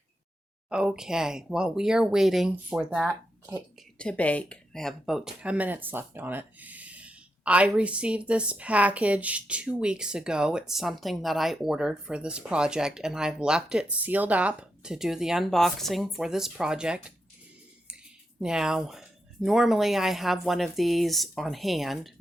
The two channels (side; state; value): both; normal; correlation 0.85